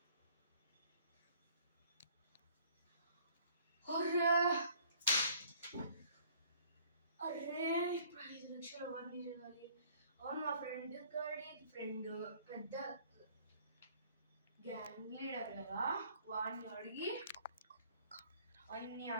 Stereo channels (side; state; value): both; inverted; correlation -0.56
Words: అరే ఇప్పుడు 5 లక్షలు అవన్నీ చేయాలి. అవును, మా ఫ్రెండ్ పెద్ద గ్యాంగ్ లీడర్ కదా. వాడిని అడిగి